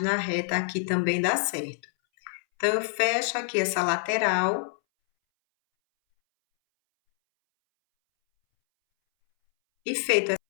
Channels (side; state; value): right; silent; 61 dB below the other